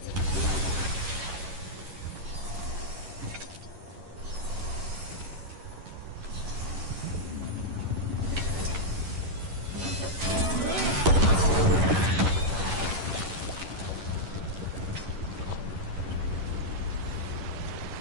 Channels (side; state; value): left; late; 11 ms